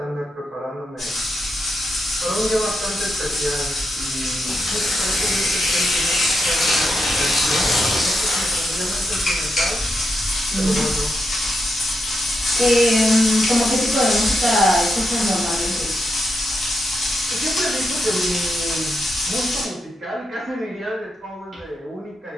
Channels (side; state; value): both; normal; correlation 0.84